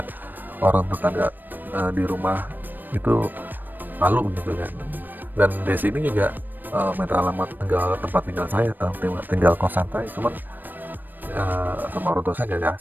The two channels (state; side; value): late; left; 0.091 ms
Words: orang tetangga di rumah itu malu gitu kan. Dan desa ini juga minta alamat tempat tinggal saya, tinggal kosan saya, cuman sama orang tua saya nggak